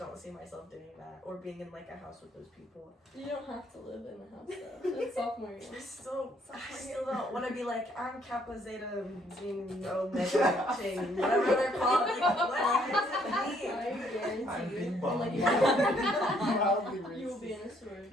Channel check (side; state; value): both; normal; correlation 0.67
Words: see myself doing that or being in like a house with those people. you don't have to live in a house though. It's sophomore year. I still don't want to be like, I'm Kappa Zeta Zine Omega Chain, whatever they're called. Like, what does it mean? I guarantee I'm you. being And, bummed. like, you will be in a